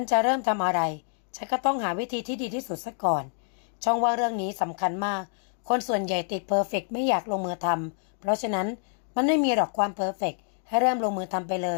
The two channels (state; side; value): silent; right; 60 dB below the other